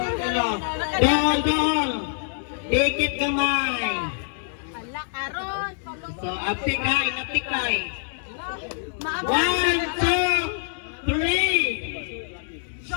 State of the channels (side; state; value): right; silent; digital silence